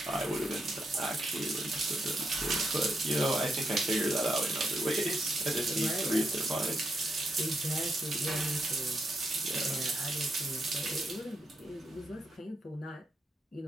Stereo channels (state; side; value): normal; both; correlation 0.82